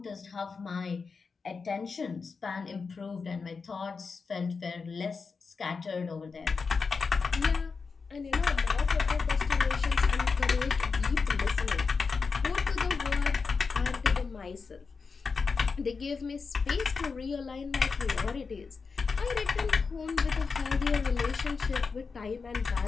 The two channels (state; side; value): quieter; right; 4.9 dB